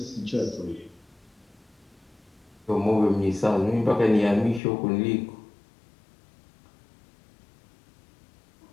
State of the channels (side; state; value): right; drops out; at 4.6 s